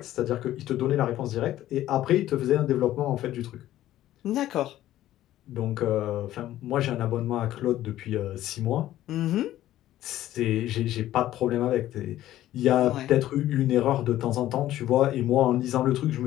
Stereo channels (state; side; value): quieter; right; 13.8 dB